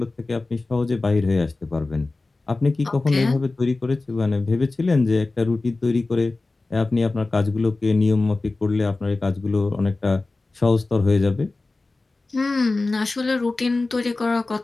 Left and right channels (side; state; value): right; quieter; 3.3 dB